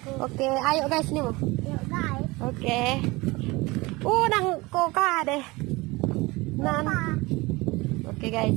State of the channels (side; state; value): left; quieter; 22.7 dB